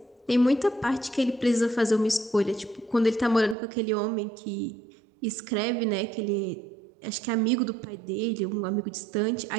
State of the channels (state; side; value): drops out; left; at 3.6 s